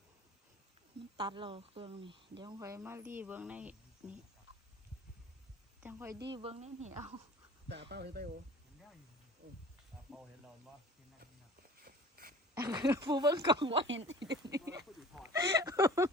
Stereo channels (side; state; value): both; normal; correlation 0.45